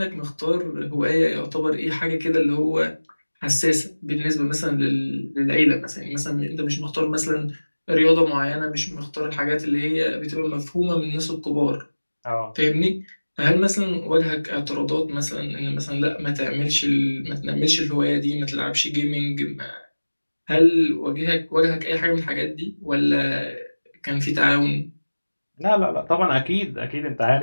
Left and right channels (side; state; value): both; inverted; correlation -1.00